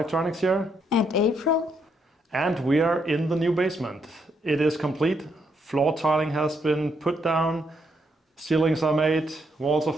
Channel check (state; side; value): normal; both; correlation 0.76